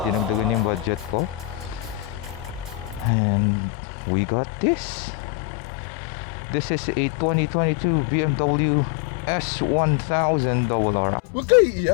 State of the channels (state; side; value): drops out; right; at 3.1 s